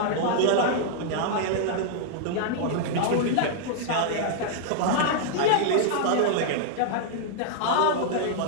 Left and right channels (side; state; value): both; different; correlation -0.01